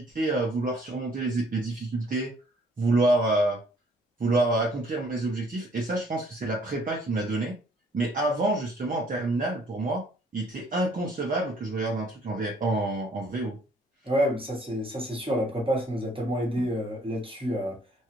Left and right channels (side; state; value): both; normal; correlation 0.62